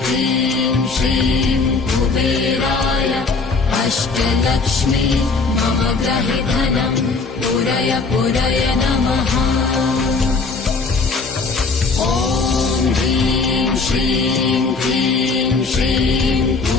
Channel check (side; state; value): right; quieter; 4.2 dB